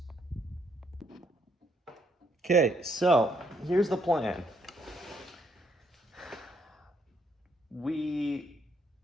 Okay, so here's the plan. We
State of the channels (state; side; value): normal; both; correlation 0.72